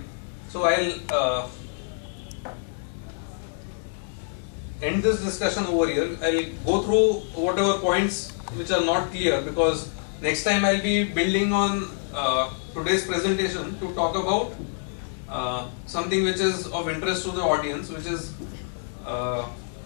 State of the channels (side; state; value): right; silent; digital silence